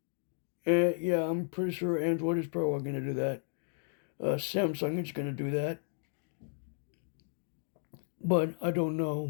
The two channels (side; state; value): right; silent; digital silence